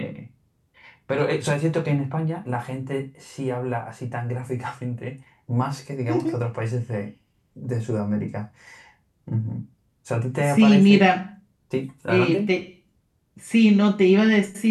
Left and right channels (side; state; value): both; identical; correlation 1.00